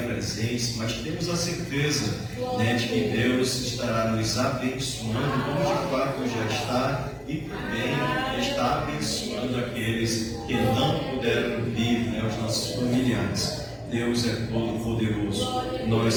presentes, mas temos a certeza de que Deus estará nos abençoando, como de fato já está, e também está abençoando aqueles que não puderam vir, os nossos familiares. Deus é todo poderoso.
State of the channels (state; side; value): identical; both; correlation 1.00